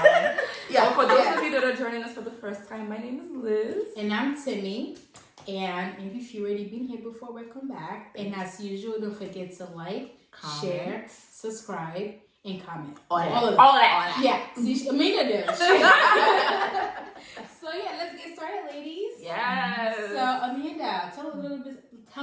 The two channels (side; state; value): both; identical; correlation 1.00